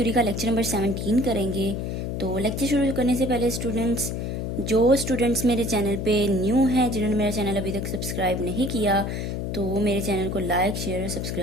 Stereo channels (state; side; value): noise; left; hum, 3 dB below the sound